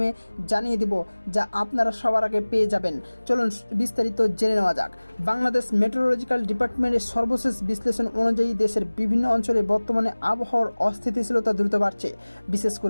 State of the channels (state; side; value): inverted; both; correlation -1.00